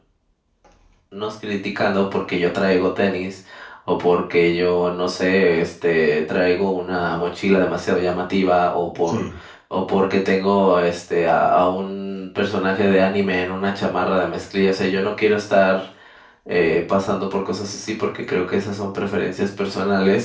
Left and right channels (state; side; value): identical; both; correlation 1.00